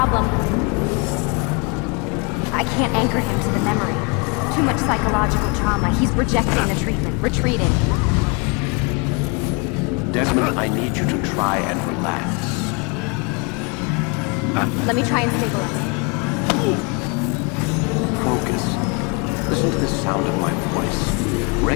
I can't anchor him to the memory. Too much psychological trauma. He's rejecting the treatment, retreating. Desmond, I need you to try and relax. Let me try and stabilize. Focus. Listen to the sound of my voice.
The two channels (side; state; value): right; quieter; 31.6 dB